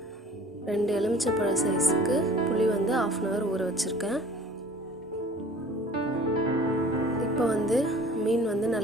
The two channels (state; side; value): normal; both; correlation 0.48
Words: 2 எலுமிச்சைப்பழ சைஸுக்கு புளி வந்து 1/2 hour ஊற வச்சுருக்கேன். இப்போ வந்து மீன் வந்து